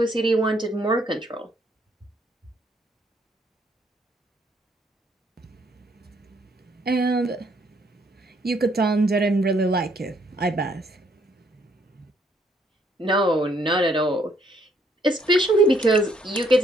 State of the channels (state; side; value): normal; both; correlation 0.68